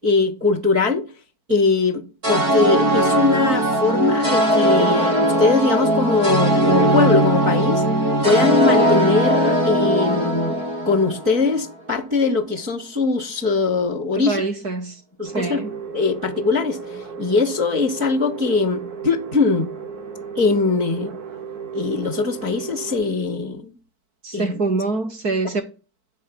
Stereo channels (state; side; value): late; left; 4.5 ms